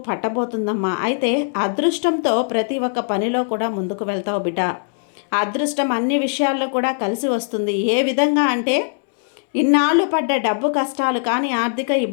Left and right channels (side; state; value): right; silent; 64 dB below the other